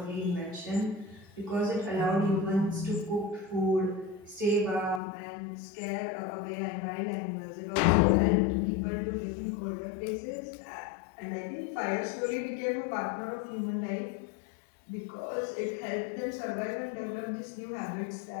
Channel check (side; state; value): right; drops out; at 5.0 s